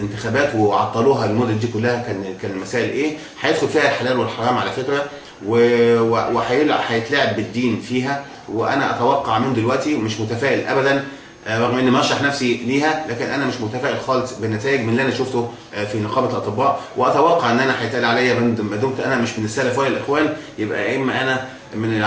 وعطلوها المده دي كلها كان المسائل ايه. هيدخل فيها الحلال والحرام على فكره، وهيتلعب بالدين فيها. وانا اتوقع من دلوقتي، ومش متفائل ابدا رغم اني مرشح نفسي ليها، لكن انا مش متفائل خالص بالنتائج من اللي انا شفته في نقابه الاطباء. واتوقع ان انا هيتقال عليا ما دمت انا مش من السلف ولا الاخوان، يبقى يا اما انا من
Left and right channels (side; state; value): both; identical; correlation 1.00